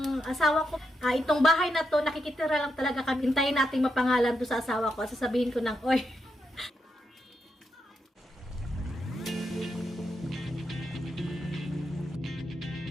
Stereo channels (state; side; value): normal; both; correlation 0.83